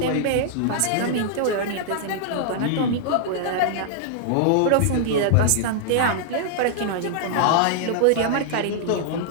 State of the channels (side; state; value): both; different; correlation -0.01